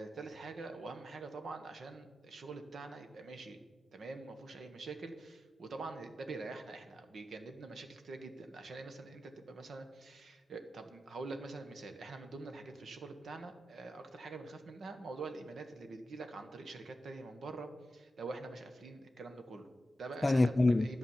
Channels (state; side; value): normal; both; correlation 0.93